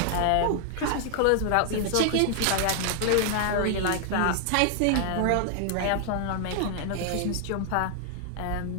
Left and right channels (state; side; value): different; both; correlation 0.00